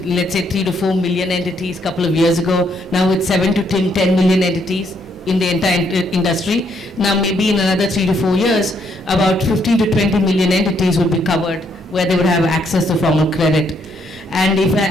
say 3 to 4 million entities a couple of years ago. Now it's 7 to 10 million entities in the entire industry. Now maybe in another 3 to 4 years, about 15 to 20 million entities will be covered where they would have access to formal credit. And if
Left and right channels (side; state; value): both; normal; correlation 0.72